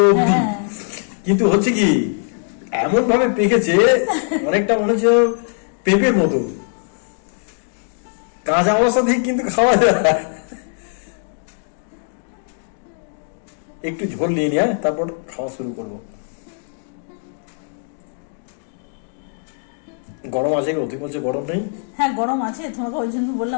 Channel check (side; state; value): right; silent; 61 dB below the other